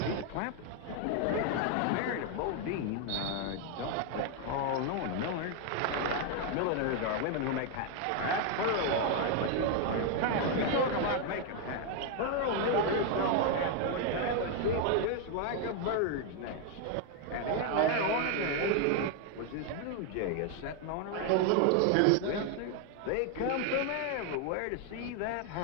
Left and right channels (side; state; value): both; different; correlation 0.00